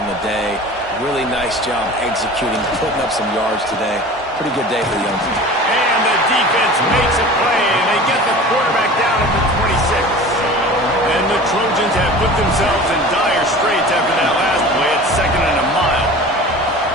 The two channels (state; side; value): normal; both; correlation 0.39